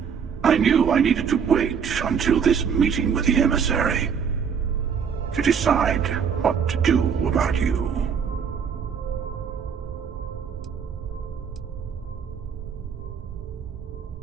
I knew I needed to wait until this meeting with the emissary to decide what to do about you.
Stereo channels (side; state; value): left; quieter; 6.9 dB